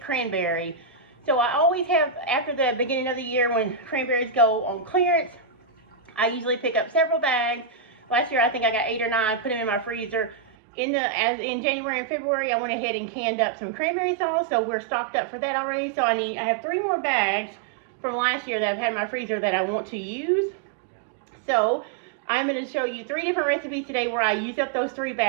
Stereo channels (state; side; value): drops out; left; at 10.5 s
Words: So I always have, after the beginning of the year when cranberries go on clearance, I usually pick up several bags. Last year I think I got 8 or 9, put them in my freezer. In January and February, I went ahead and canned up some cranberry sauce, so we're stocked up for that already. So I have 3 more bags from last year that I've had in my freezer that I want to use. So I'm going to show you 3 different recipes today where I use up those 3